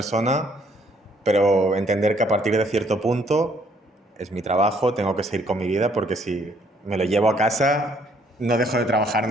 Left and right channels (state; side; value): normal; both; correlation 0.65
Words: pero entender que a partir de cierto punto es mi trabajo, tengo que seguir con mi vida, porque si me lo llevo a casa no dejo de trabajar